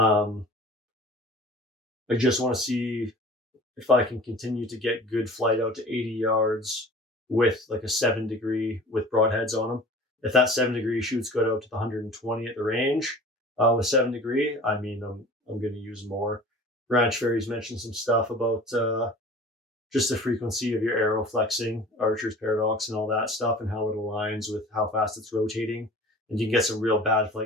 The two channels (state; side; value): normal; both; correlation 0.42